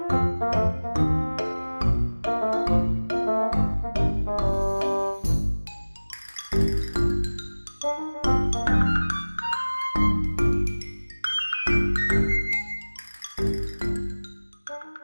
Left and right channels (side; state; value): both; inverted; correlation -1.00